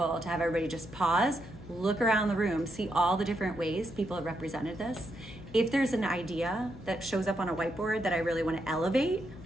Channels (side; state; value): left; noise; hum, 17 dB below the sound